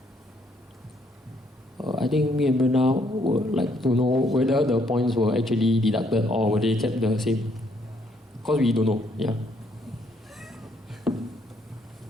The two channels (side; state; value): both; normal; correlation 0.70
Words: I think me and Brenda would like to know whether the points were actually deducted or were they kept the same. Because we don't know, yeah.